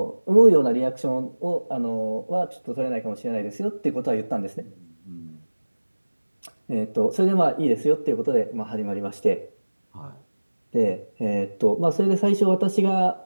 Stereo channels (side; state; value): both; inverted; correlation -1.00